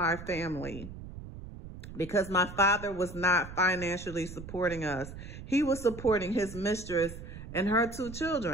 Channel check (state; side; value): noise; right; rumble, 12 dB below the sound